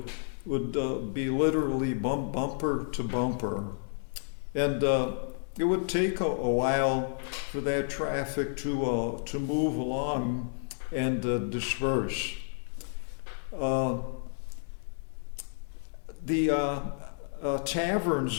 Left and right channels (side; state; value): right; silent; digital silence